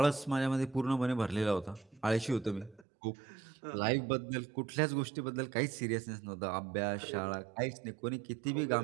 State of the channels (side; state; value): left; drops out; at 2.9 s